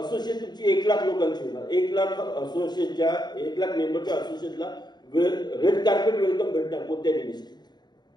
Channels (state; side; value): late; right; 0.21 ms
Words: तुमची 1 लाख लोकांची होणार. 1 लाख असोसिएशनच्या 1 लाख मेंबरच्या असोसिएशनला रेड कार्पेट वेलकम भेटणार कोणत्याही मिनिस्ट्रीत.